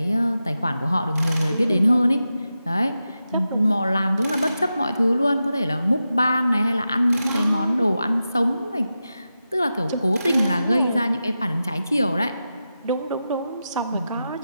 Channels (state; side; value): inverted; both; correlation -0.91